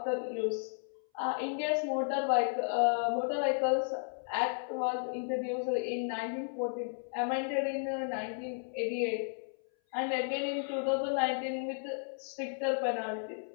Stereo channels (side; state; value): right; silent; 55 dB below the other